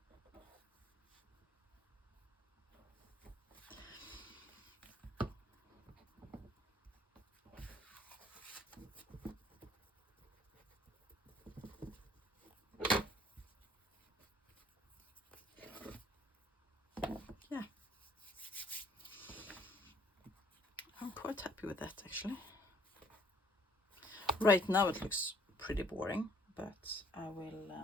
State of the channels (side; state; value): both; normal; correlation 0.60